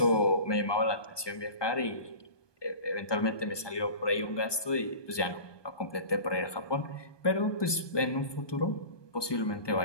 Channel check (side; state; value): right; late; 1.2 ms